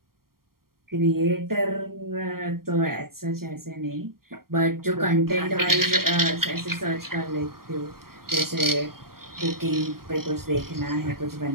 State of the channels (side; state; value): left; late; 0.93 ms